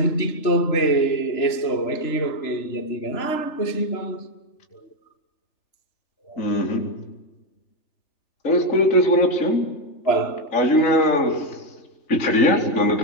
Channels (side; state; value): right; late; 3.0 ms